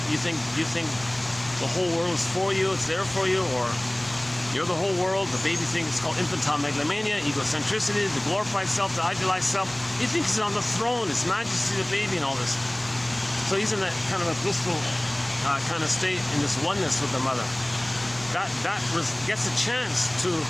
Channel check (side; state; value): right; noise; rumble, 26 dB below the sound